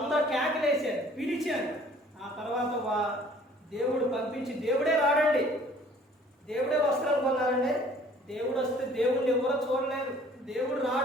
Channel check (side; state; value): both; normal; correlation 0.54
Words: కేకలేశారు, పిలిచారు. ఆ తర్వాత దేవుడు పంపించి, దేవుడే రాడండి, దేవుడే వస్త్రం కొన్నారండి. దేవుడు వస్తే దేవుడిని ఎవరో చూడలేరు, దేవుడు